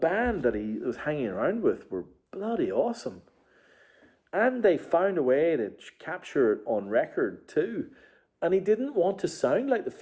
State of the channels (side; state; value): both; identical; correlation 1.00